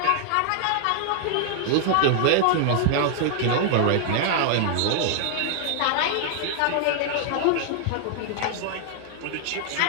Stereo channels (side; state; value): both; different; correlation 0.00